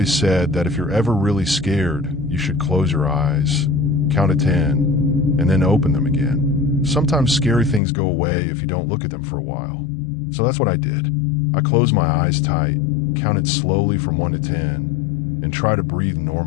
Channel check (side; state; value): right; drops out; at 7.8 s